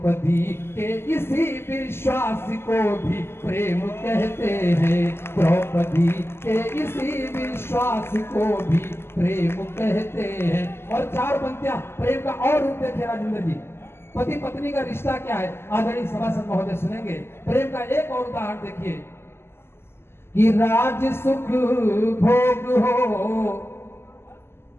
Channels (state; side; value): late; right; 0.12 ms